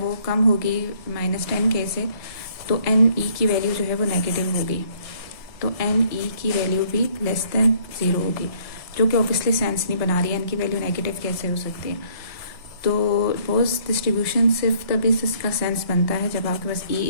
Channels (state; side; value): late; right; 1.7 ms